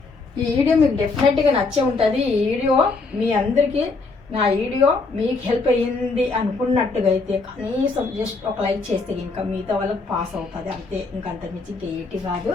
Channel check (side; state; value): right; quieter; 3.9 dB